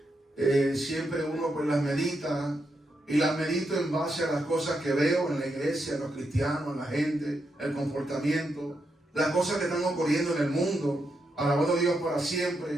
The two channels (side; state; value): both; normal; correlation 0.83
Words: siempre uno pues las medita. Y las medito en base a las cosas que veo en la iglesia, en los cristianos, en la gente, el comportamiento, las cosas que están ocurriendo en el mundo. Alabado Dios para